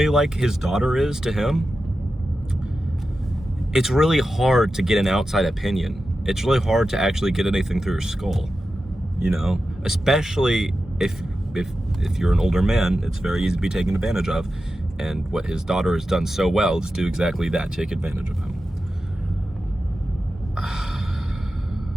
like his daughter is to him, it's really hard to get an outside opinion. It's really hard to actually get anything through your skull, you know? Especially if you're an older man, it's very easy to be taken advantage of. And what his daughter has done so well is do exactly that, take advantage of him.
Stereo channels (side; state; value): both; normal; correlation 0.92